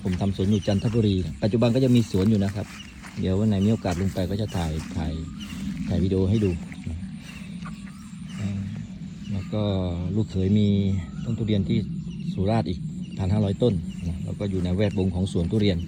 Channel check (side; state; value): both; identical; correlation 1.00